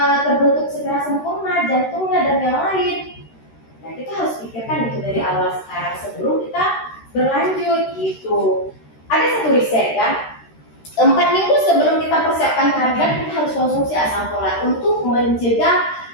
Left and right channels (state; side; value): late; right; 13 ms